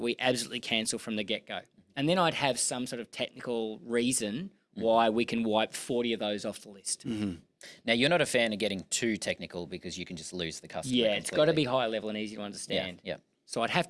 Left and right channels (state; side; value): identical; both; correlation 1.00